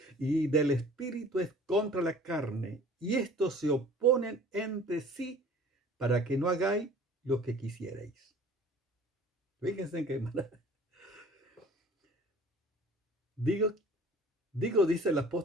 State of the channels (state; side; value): normal; both; correlation 0.48